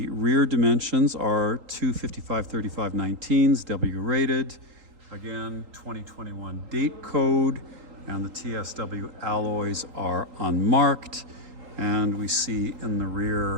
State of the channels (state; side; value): late; left; 3.8 ms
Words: rear dimensions are 255/35/19s, W rated. Again, 2021 date code, and the TSW alloys are unmarked. And we see in the